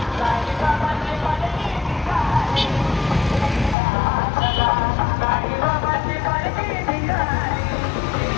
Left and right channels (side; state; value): right; drops out; at 3.8 s